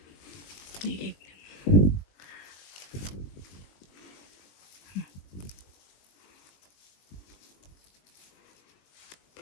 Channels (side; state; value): right; late; 21 ms